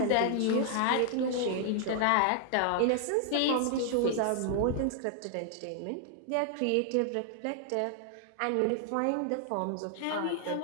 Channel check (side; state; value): both; different; correlation 0.00